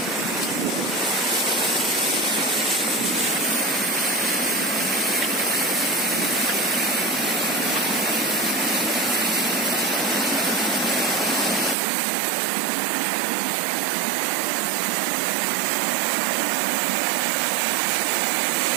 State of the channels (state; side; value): drops out; left; at 11.8 s